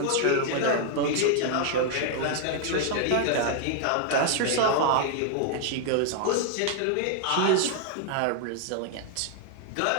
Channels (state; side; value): different; both; correlation 0.00